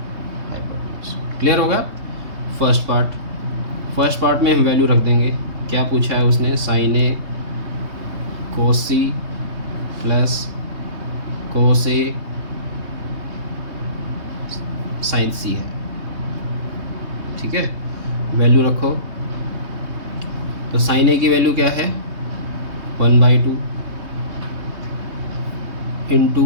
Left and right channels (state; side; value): late; left; 3.2 ms